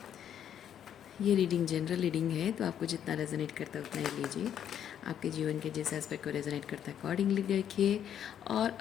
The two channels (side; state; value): right; quieter; 9.6 dB